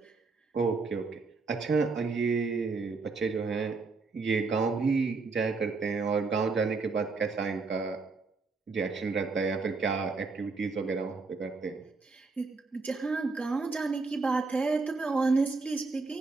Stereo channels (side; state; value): left; quieter; 4.1 dB